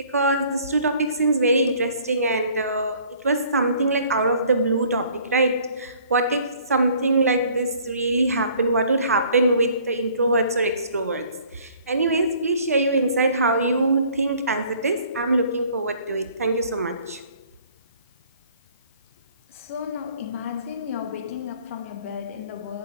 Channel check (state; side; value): inverted; both; correlation -0.56